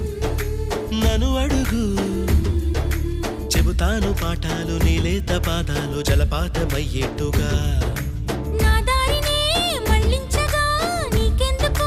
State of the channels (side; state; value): both; identical; correlation 1.00